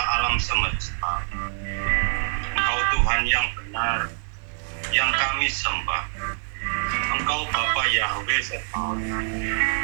semesta. Engkau Tuhan yang benar, yang kami sembah. Engkau Bapa Yahweh Sebaot.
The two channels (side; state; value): left; silent; 57 dB below the other